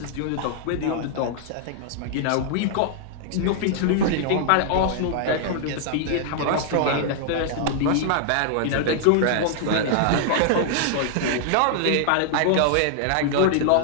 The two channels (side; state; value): both; different; correlation -0.01